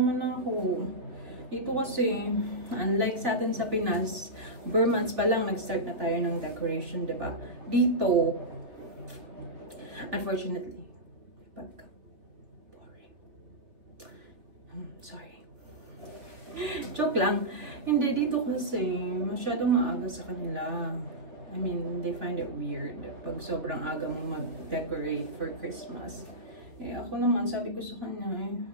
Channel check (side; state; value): left; late; 3.2 ms